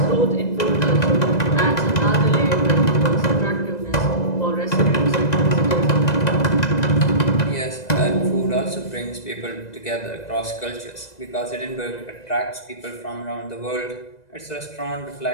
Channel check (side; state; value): right; late; 2.0 ms